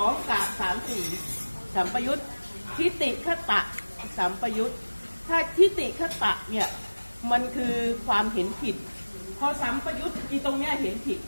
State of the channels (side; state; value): both; inverted; correlation -1.00